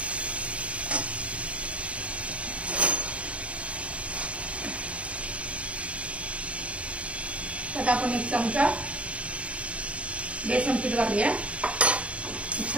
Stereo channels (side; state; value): left; late; 0.064 ms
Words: आता आपण 1 चमचा बेसन पीठ घालूया.